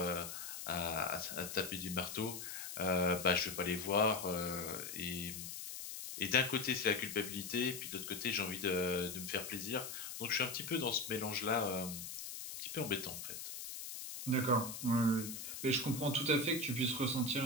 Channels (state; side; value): noise; left; hiss, 8 dB below the sound